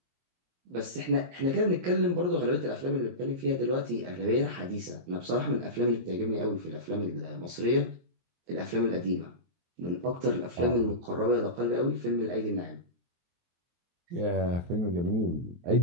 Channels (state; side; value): late; left; 23 ms